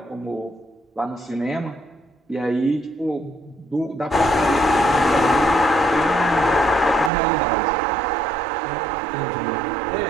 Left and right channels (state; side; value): drops out; left; at 7.1 s